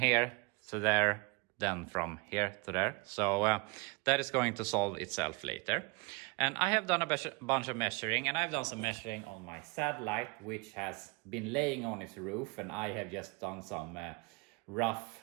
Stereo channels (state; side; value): quieter; left; 28.2 dB